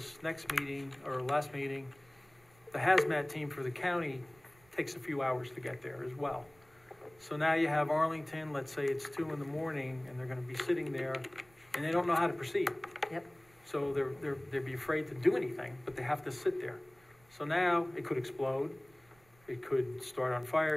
next meeting, or last meeting, the hazmat team for the county takes a few hours to get there as well. So now you have Arlington, let's say it's 2 in the morning, and they're gonna be sitting there, and they don't know how to proceed. Yep. So they'd be afraid to do anything, but they have to sit there. So now it could explode, it could start on fire,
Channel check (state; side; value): noise; right; rumble, 30 dB below the sound